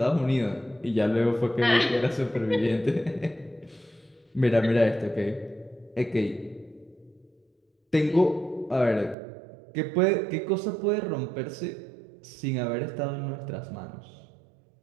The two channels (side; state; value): left; drops out; at 9.2 s